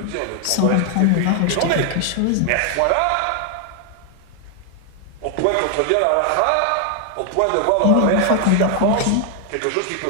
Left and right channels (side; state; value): both; different; correlation 0.00